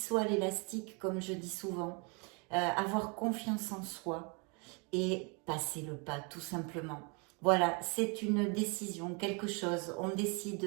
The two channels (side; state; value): left; quieter; 33.4 dB